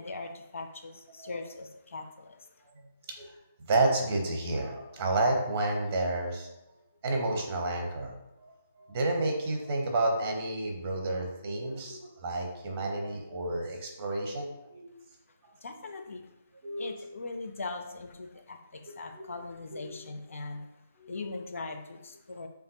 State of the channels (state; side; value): inverted; both; correlation -0.71